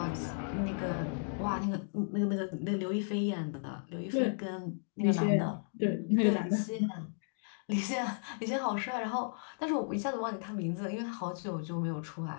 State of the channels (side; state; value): right; silent; digital silence